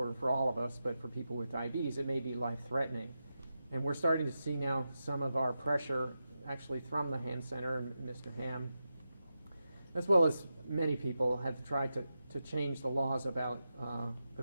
for all of us, but for people with diabetes, it may be life-threatening. And we're starting to see now some of our pressure actually from the Ham Center and Mr. Ham, as well as many people have tried to change the laws about the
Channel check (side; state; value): both; inverted; correlation -0.90